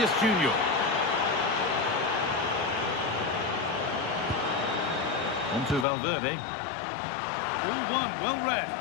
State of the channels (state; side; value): drops out; right; at 5.9 s